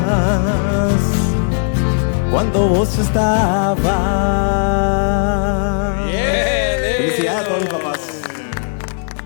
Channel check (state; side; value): silent; right; digital silence